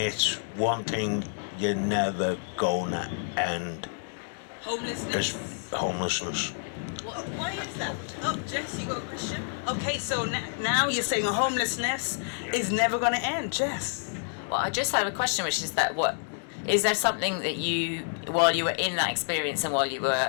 one thing you're never gonna end. Homelessness. Why is that? Oh, Jess, you got a question? Okay, so now you're saying homelessness is never going to end, Jess. Well, I just have a question, which is that is there something that you, while you were in that experience and while you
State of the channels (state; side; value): silent; right; digital silence